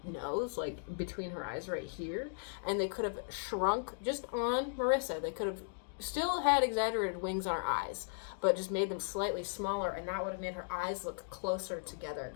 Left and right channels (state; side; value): silent; right; digital silence